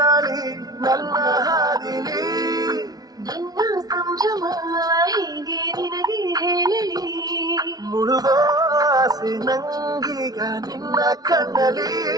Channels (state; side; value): late; left; 0.18 ms